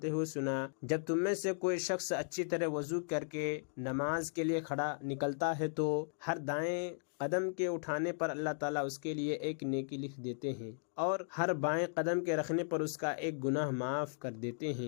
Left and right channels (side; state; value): right; silent; digital silence